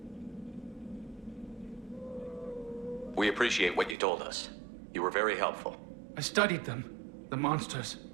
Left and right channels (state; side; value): drops out; left; at 4.0 s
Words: We appreciate what you told us. You were very helpful. I studied them. The monsters.